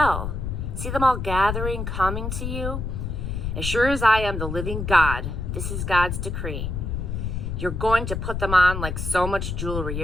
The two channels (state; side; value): noise; left; rumble, 3 dB below the sound